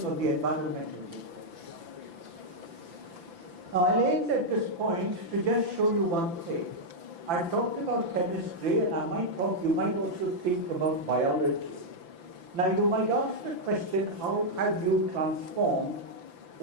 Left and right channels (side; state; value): left; late; 5.9 ms